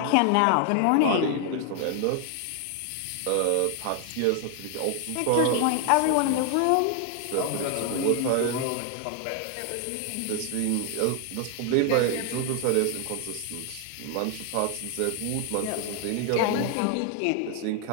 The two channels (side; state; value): both; different; correlation 0.00